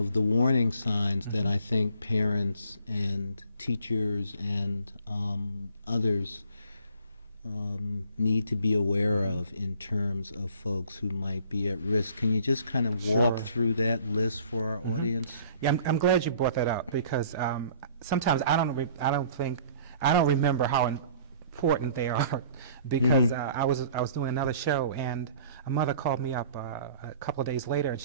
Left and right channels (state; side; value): inverted; both; correlation -0.53